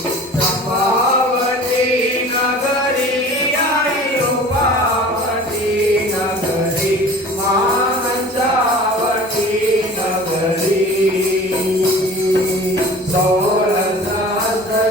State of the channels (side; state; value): both; normal; correlation 0.43